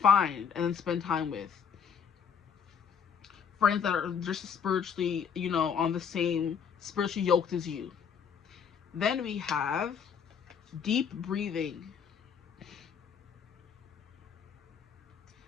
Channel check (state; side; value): quieter; right; 7.1 dB